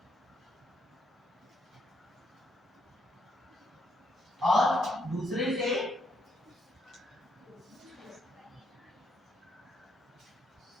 और दूसरे से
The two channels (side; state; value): both; normal; correlation 0.75